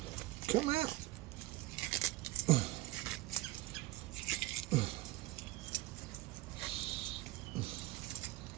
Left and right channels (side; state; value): left; quieter; 18.7 dB